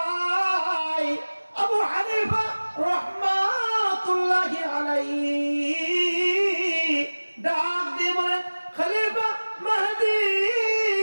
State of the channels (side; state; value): both; inverted; correlation -1.00